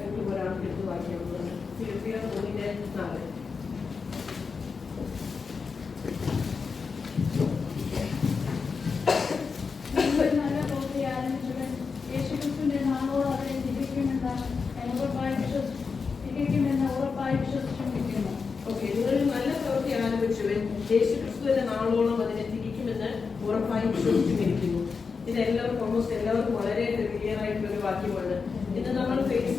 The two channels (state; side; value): quieter; right; 5.2 dB